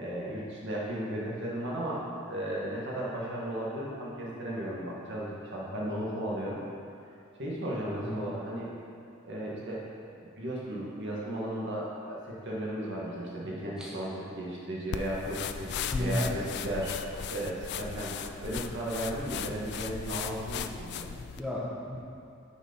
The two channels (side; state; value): both; normal; correlation 0.51